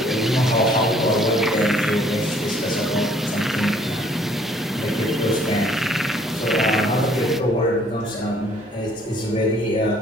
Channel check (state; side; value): normal; both; correlation 0.60